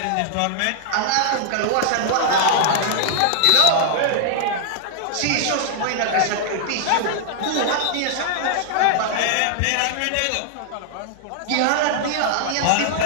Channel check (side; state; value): both; different; correlation -0.01